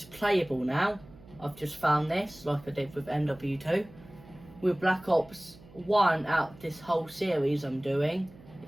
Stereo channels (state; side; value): noise; right; hum, 22 dB below the sound